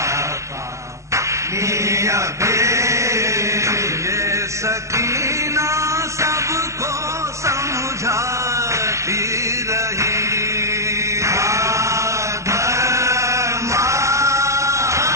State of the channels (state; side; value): late; left; 0.15 ms